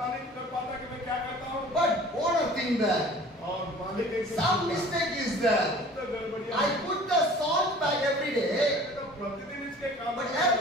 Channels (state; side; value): normal; both; correlation 0.47